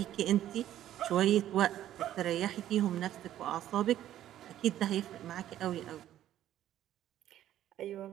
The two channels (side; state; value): left; quieter; 12.3 dB